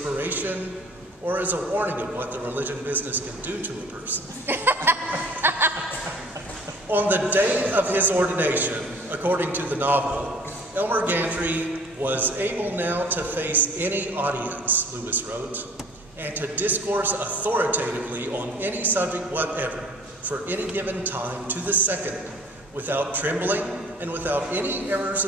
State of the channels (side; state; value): both; normal; correlation 0.50